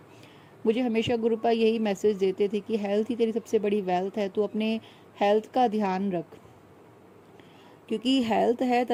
मुझे हमेशा गुरुपा यही मैसेज देते थे कि हेल्थ ही तेरी सबसे बड़ी वेल्थ है, तू अपने हेल्थ का ध्यान रख, क्योंकि हेल्थ है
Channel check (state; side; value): identical; both; correlation 1.00